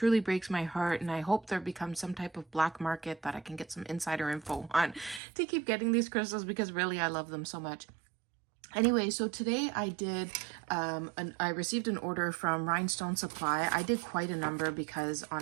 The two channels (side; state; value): left; drops out; at 5.2 s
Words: breaks my heart, and I hope there becomes some type of black market that I can get some insider info on to keep getting these crystals, because really I love them so much. Anyway, so today I did, I received an order from Rhinestone Supply. I did quite a number because